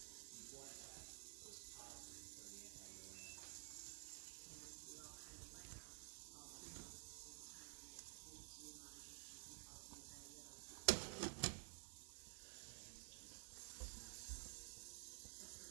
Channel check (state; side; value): silent; left; digital silence